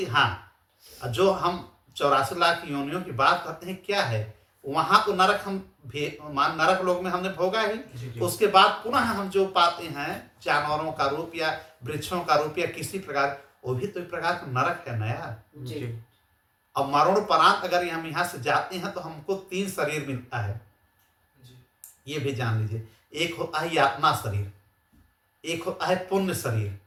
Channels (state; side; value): identical; both; correlation 1.00